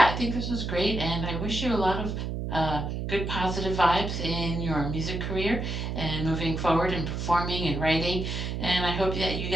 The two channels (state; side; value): noise; right; hum, 3 dB below the sound